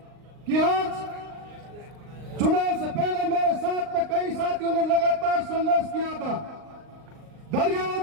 कि आज चुनाव से पहले मेरे साथ में कई साथियों ने लगातार संघर्ष किया था।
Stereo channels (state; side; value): late; left; 39 ms